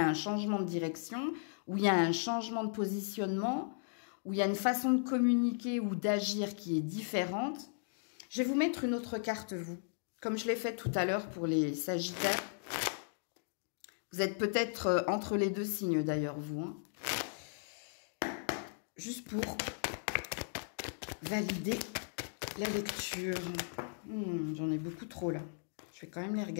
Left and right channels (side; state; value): right; silent; digital silence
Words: un changement de direction, ou il y a un changement de positionnement, ou il y a une façon de communiquer ou d'agir qui est différente. Je vais vous mettre une autre carte, vous, comme je l'ai fait tout à l'heure pour les Sagittaires. Vous êtes peut-être entre les deux signes d'ailleurs, vous. Hein. Juste pour valider la lecture. J'en ai beaucoup trop là. Je vais quand même les